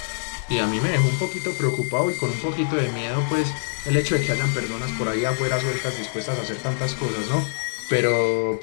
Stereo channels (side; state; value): right; silent; digital silence